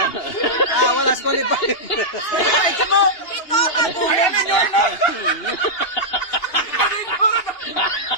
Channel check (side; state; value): right; late; 2.8 ms